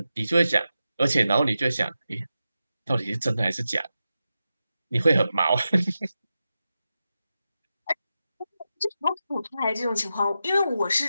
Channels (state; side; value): inverted; both; correlation -0.91